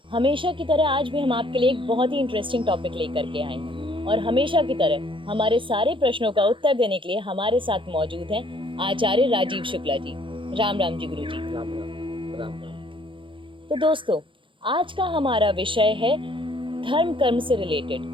हमेशा की तरह आज भी हम आपके लिए एक बहुत ही इंटरेस्टिंग टॉपिक लेकर के आए हैं और हमेशा की तरह हमारे सारे प्रश्नों का उत्तर देने के लिए हमारे साथ मौजूद हैं आचार्य राजीव शुक्ला जी। राम राम जी गुरु जी। राम राम राम राम। तो दोस्तों, आज का हमारा विषय है धर्म कर्म से रिलेटेड,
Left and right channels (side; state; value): left; late; 0.25 ms